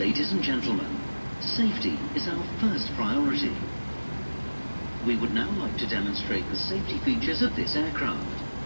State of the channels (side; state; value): both; inverted; correlation -1.00